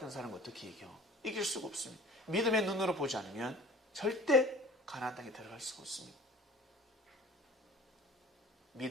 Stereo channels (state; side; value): normal; both; correlation 0.45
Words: 사람은 어떻게 이겨? 이길 수가 없습니다. 믿음의 눈으로 보지 않으면 절대 가나안 땅에 들어갈 수가 없습니다.